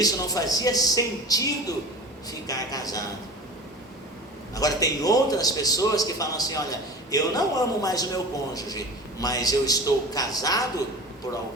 não fazia sentido ficar casado. Agora tem outras pessoas que falam assim: olha, eu não amo mais o meu cônjuge, mas eu estou casado por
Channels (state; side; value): normal; both; correlation 0.36